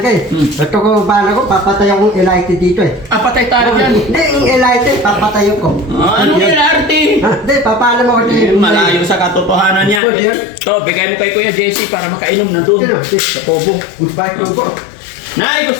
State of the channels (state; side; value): drops out; right; at 10.0 s